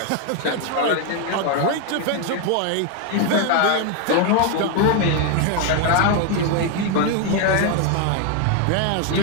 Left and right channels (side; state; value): both; different; correlation 0.01